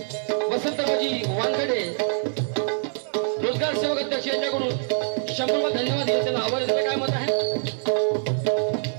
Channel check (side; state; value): left; silent; 60 dB below the other